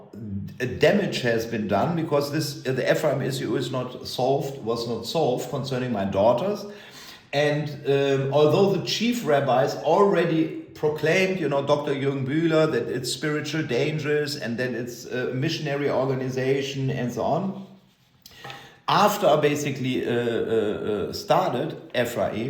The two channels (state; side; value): identical; both; correlation 1.00